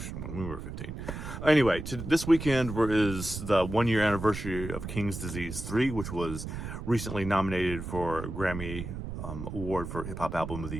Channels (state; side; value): noise; right; rumble, 7 dB below the sound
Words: when we were 15. Anyway, this weekend is the 1-year anniversary of King's Disease 3, which was recently nominated for a Grammy award for Hip Hop Album of the